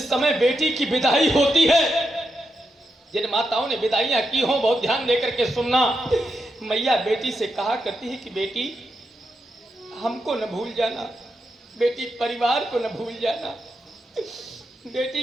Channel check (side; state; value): both; normal; correlation 0.85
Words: समय बेटी की विदाई होती है, जिन माताओं ने विदाइयां की हों बहुत ध्यान देकर के सुनना। मैया बेटी से कहा करती है कि बेटी हमको न भूल जाना, बेटी परिवार को न भूल जाना। बेटी